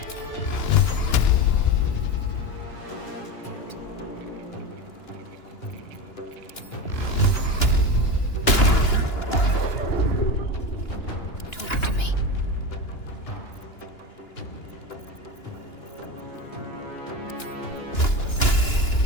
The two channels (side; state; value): right; late; 2.9 ms